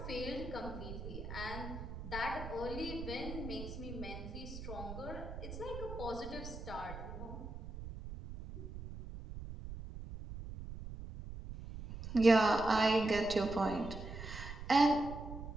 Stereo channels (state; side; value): noise; right; rumble, 9 dB below the sound